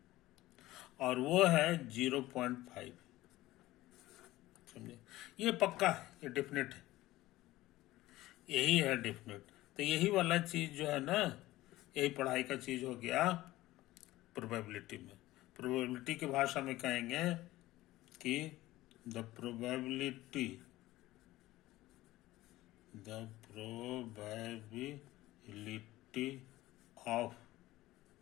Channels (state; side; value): quieter; right; 17.0 dB